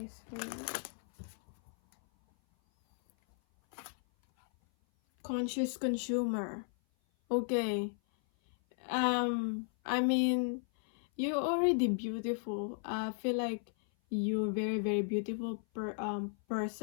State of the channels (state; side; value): silent; right; 54 dB below the other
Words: Conscious consumer. Okay. I mean, you're already beautiful. I feel like you're very, very beautiful